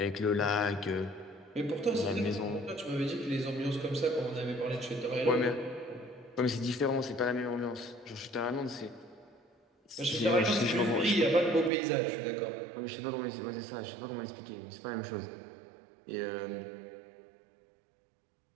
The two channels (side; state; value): left; drops out; at 11.7 s